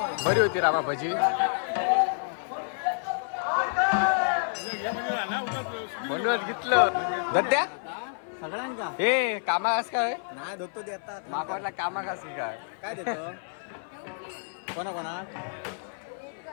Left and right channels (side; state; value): right; silent; 55 dB below the other